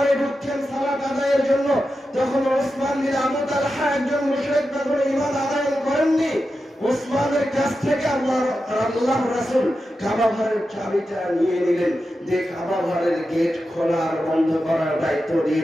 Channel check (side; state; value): both; normal; correlation 0.90